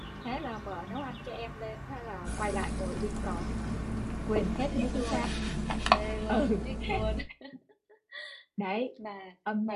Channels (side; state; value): both; identical; correlation 1.00